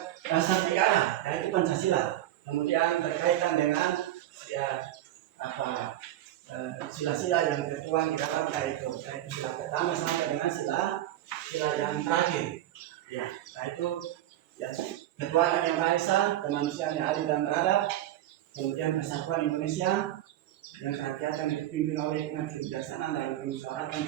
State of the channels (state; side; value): quieter; left; 13.6 dB